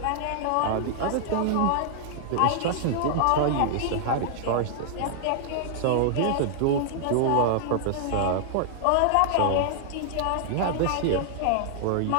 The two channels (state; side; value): different; both; correlation -0.01